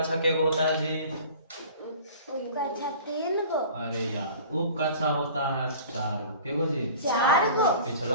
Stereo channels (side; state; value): both; inverted; correlation -0.43